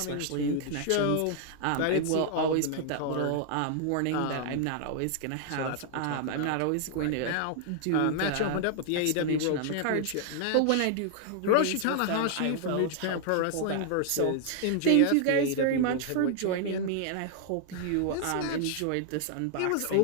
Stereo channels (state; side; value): different; both; correlation 0.00